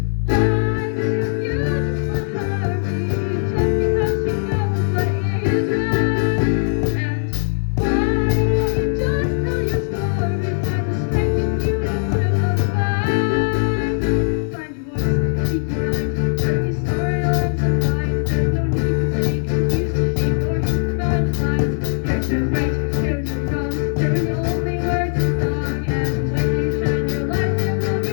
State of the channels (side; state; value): right; silent; 56 dB below the other